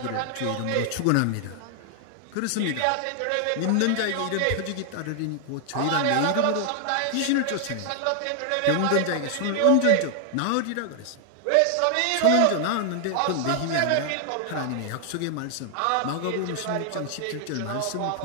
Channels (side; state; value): both; different; correlation 0.00